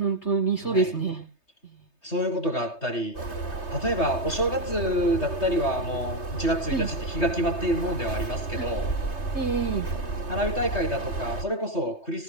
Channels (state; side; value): late; right; 3.3 ms